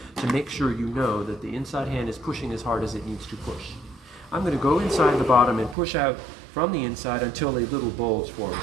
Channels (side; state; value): left; drops out; at 5.8 s